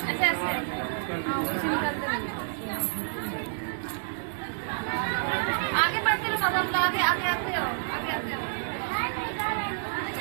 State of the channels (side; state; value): left; silent; digital silence